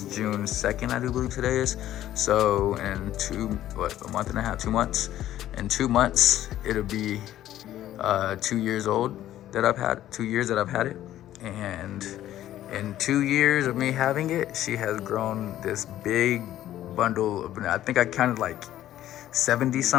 June 2nd, I do believe today is. So in a month and a half, 2 months. In 2 months, it'll be 2 years old that I've had, 2 years that I've had it. And in 2 years of me having it, she has grown this big bundle of banana. I think I counted like 70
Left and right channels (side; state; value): right; quieter; 12.9 dB